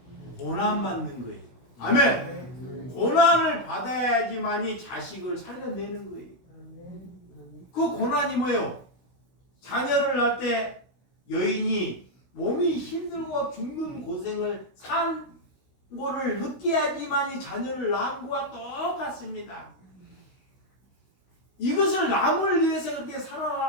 고난 받는 거예요. 아멘. 고난을 받아야지만이 자식을 살려내는 거예요. 그 고난이 뭐예요? 자녀를 낳을 때 여인이 몸이 힘들고 죽는 고생을 산 거를 느껴야지만이 자녀를 낳은 거와 똑같습니다. 이것을 남을 위해서 그렇게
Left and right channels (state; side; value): late; right; 16 ms